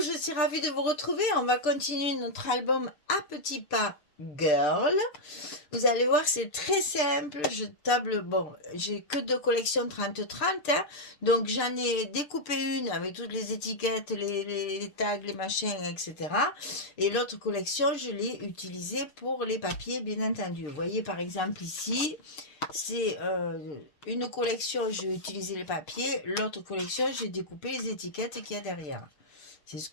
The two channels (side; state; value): right; late; 6.8 ms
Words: je suis ravie de vous retrouver. On va continuer notre album à petits pas Girl. Vous allez voir, c'est très simple. Je table, bon, j'ai que deux collections 30-30, hein. Donc j'en ai découpé une avec toutes les étiquettes, les tags, les machins, etc. Et l'autre collection, je l'ai utilisée pour les papiers, bien entendu. Vous voyez par exemple ici, c'est une collection, j'ai utilisé les papiers. L'autre collection, j'ai découpé les étiquettes qu'il y a derrière. C'est ce